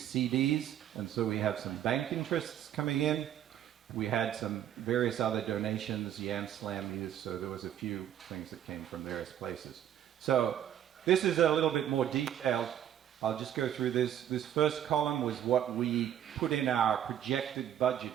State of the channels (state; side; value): quieter; left; 10.6 dB